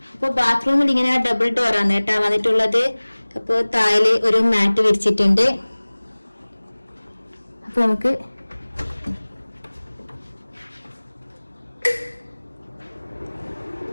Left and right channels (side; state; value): both; inverted; correlation -1.00